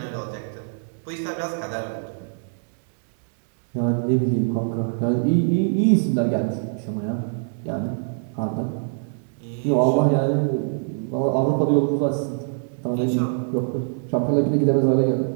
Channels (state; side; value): silent; left; digital silence